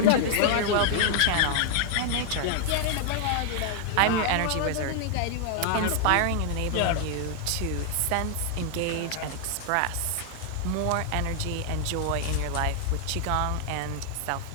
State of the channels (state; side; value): different; both; correlation 0.00